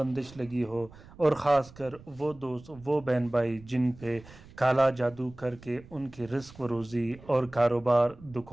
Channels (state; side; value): noise; right; rumble, 21 dB below the sound